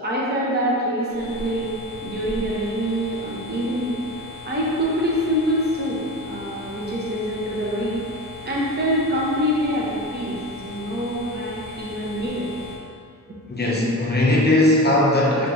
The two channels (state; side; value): normal; both; correlation 0.29